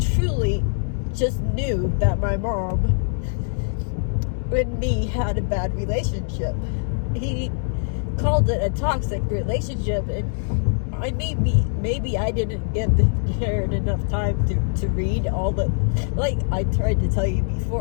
truly just knew that my mom and me had a bad relationship. He called it a toxic relationship, and maybe I didn't give Jared enough time to read all the, like I tried to tell you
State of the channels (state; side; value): silent; right; digital silence